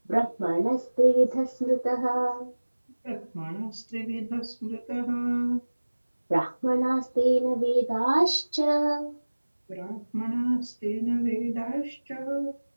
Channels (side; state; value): both; inverted; correlation -1.00